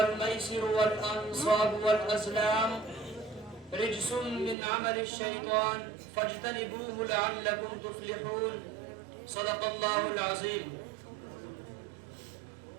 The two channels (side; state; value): left; drops out; at 4.5 s